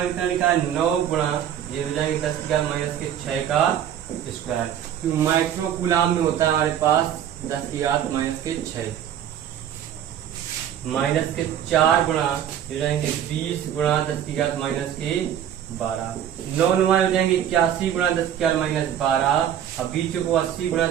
कितना लिखा है, 9 गुणा, ये हो जाएंगे 10 की घात -6 का स्क्वायर, क्यों माइक्रो कूलाम में होता है हमारे पास 10 की घात -6, -4 गुणा, ये जाएंगे 20 गुणा 10 की घात -12, 9 नुमा हो जाएंगे 81 गुणा 10 की घात -12, अब बीचों को 80 गुणा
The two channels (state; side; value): quieter; left; 10.0 dB